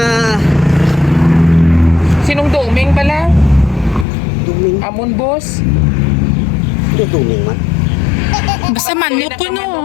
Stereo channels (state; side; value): drops out; right; at 4.0 s